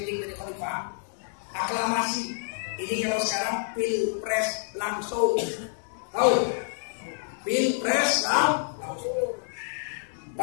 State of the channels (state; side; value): silent; right; 59 dB below the other